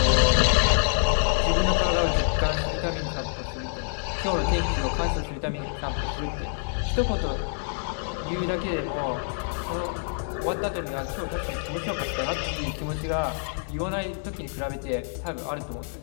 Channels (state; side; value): silent; right; 61 dB below the other